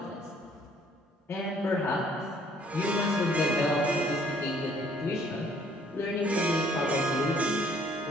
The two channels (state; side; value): normal; both; correlation 0.61